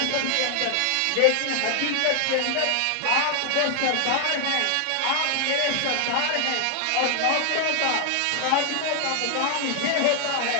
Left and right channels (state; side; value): different; both; correlation 0.00